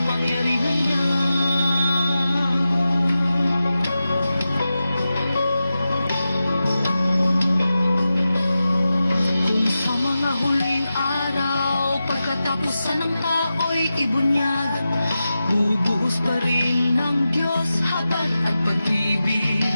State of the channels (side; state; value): both; inverted; correlation -0.92